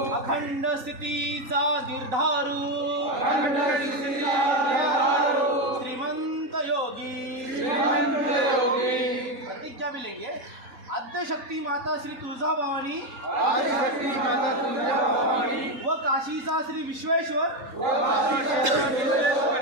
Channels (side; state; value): left; late; 3.8 ms